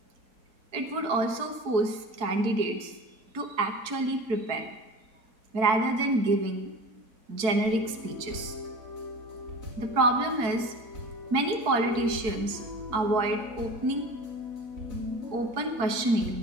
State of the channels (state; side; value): late; left; 4.6 ms